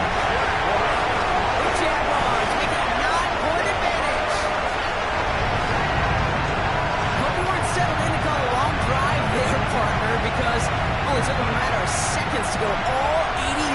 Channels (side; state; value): both; identical; correlation 1.00